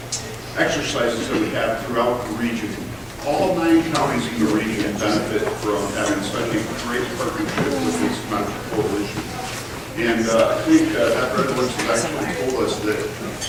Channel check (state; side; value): identical; both; correlation 1.00